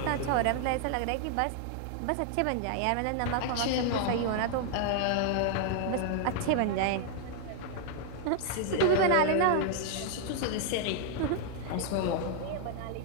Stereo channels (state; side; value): different; both; correlation 0.00